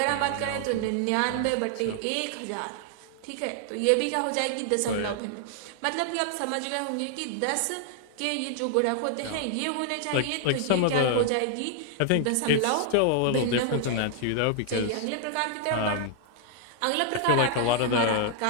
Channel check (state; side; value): different; both; correlation 0.00